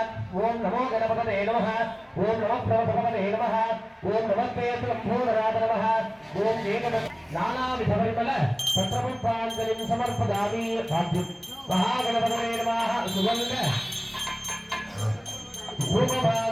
ॐ नमो गणपतये नमः. ॐ नमः प्रवतपतये नमः. ॐ नमस्ते लम्बोदराद नमः. ॐ एकद नानाविधपरिमल पत्रपुष्पाञ्जलिं समर्पयामि. भाग्यं महागणपतये नमः. सुगन्ध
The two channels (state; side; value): identical; both; correlation 1.00